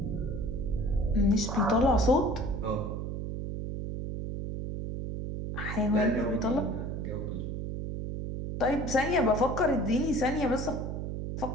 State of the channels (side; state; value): right; noise; hum, 4 dB below the sound